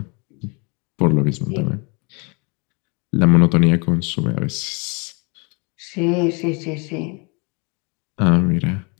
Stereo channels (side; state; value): right; quieter; 31.6 dB